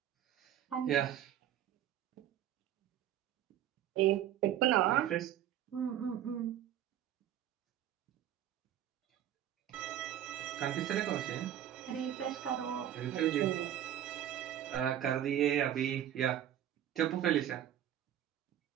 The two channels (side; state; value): left; quieter; 11.2 dB